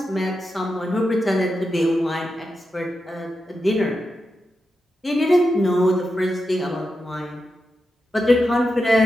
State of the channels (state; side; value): normal; both; correlation 0.89